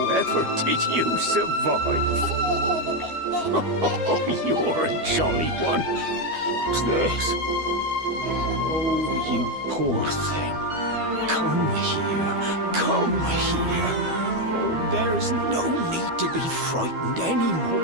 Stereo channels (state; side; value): late; left; 12 ms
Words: did you survive? Oh, you're a jolly one. What's this? Oh, you poor thing. Come here. Come here. Oh, there's no need to be frightened